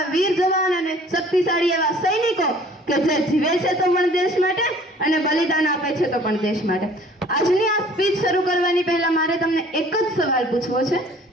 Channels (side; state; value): both; normal; correlation 0.52